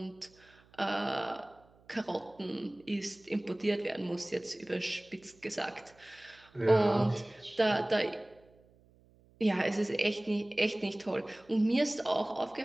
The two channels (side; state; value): right; noise; hum, 29 dB below the sound